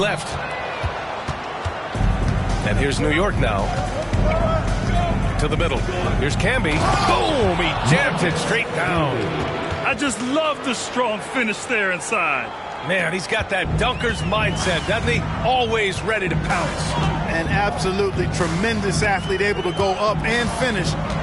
And here's New York now. To the middle. Here's Camby. Boom! He jammed it straight down. I just love the strong finish there inside. Man, he's got that dunker's mindset, doesn't he? Always ready to pounce. An absolutely tremendous athlete, able to go up and finish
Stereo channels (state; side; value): identical; both; correlation 1.00